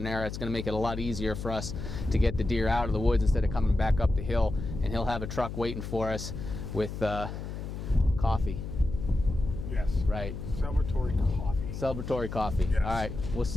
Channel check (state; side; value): noise; left; hum, 7 dB below the sound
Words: there. It's going to make it a lot easier for us to get the deer out of the woods instead of coming back up the hill, and he'll have a truck waiting for us with coffee. Yes. Right. Celebratory coffee. Celebratory coffee. Yes. All right. We'll